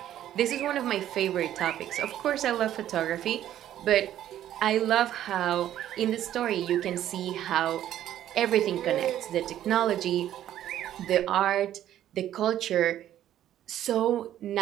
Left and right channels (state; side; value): quieter; left; 11.9 dB